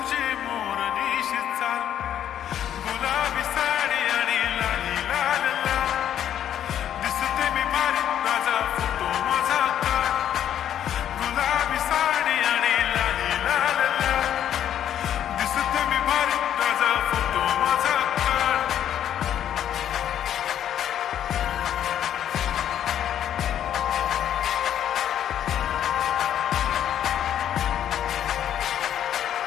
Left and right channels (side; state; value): right; quieter; 10.3 dB